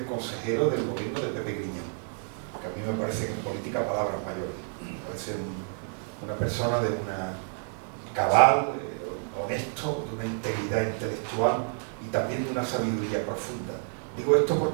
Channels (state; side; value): silent; left; 58 dB below the other